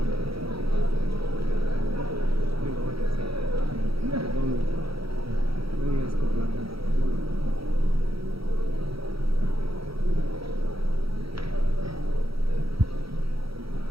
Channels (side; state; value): left; late; 0.75 ms